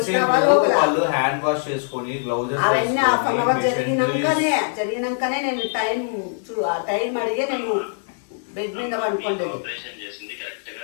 సేపు వాళ్ళు హ్యాండ్ వాష్ చేసుకొని గ్లౌజెస్ అవన్నీ హాఫ్ అన్ అవర్ జరిగినాకనే నేను టైం అడిగే నేను బెడ్ మీద పడుకోండి.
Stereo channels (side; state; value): right; silent; digital silence